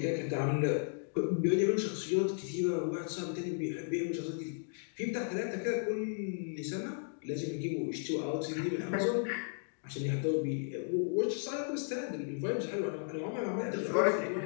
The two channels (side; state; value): right; silent; digital silence